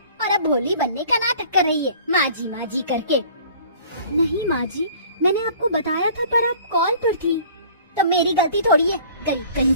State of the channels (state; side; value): inverted; both; correlation -0.49